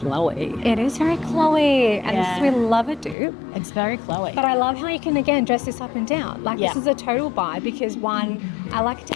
It is very Chloe. And we love it, dude. It's very Chloe. But I love how you can, again, dress this up and down. Like, this is a total buy because, one, I like to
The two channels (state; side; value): drops out; right; at 3.2 s